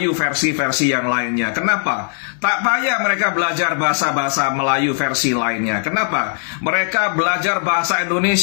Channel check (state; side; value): silent; right; digital silence